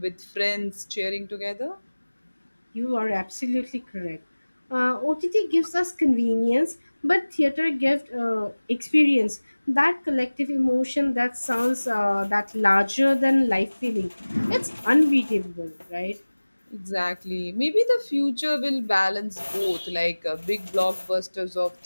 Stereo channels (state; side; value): inverted; both; correlation -1.00